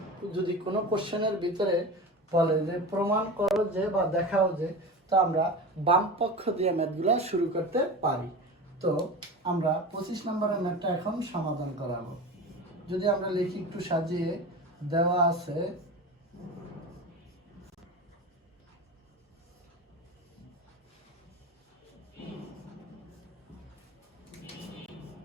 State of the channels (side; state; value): both; normal; correlation 0.29